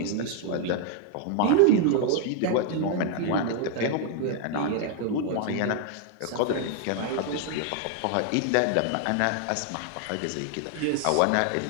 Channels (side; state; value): both; different; correlation 0.00